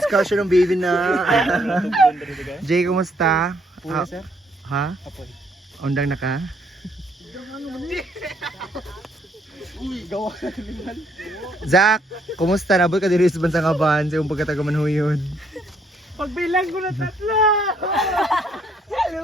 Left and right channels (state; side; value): normal; both; correlation 0.69